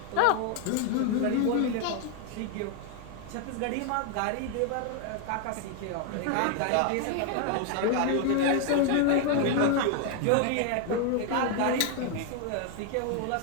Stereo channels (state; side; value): different; both; correlation 0.00